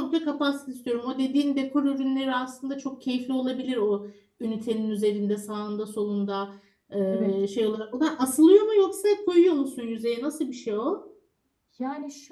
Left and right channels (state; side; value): identical; both; correlation 1.00